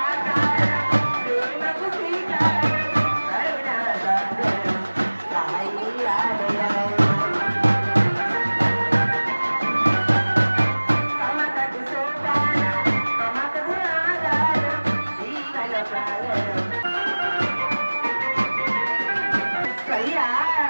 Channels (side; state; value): both; inverted; correlation -1.00